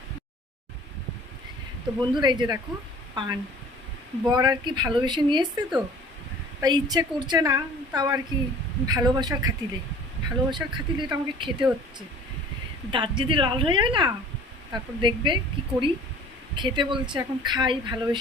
তো বন্ধুরা এই যে দেখো পান, বর আর কি ভালোবেসে নিয়ে এসছে, তো তাই ইচ্ছে করছে না, তাও আর কি ভালোবাসার খাতিলে এটা আমাকে খেতে হচ্ছে। দাঁত যদি লাল হয়ে যায় না, তারপর দেখবে কি করি। খেতে বলছে, এখন খাই,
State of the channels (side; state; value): both; normal; correlation 0.47